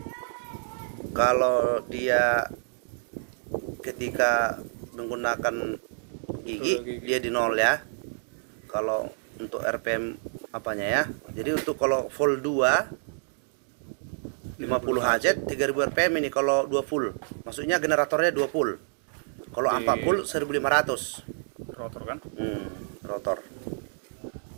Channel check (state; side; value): silent; left; digital silence